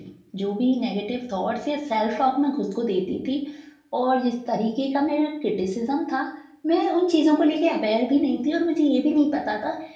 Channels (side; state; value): both; identical; correlation 1.00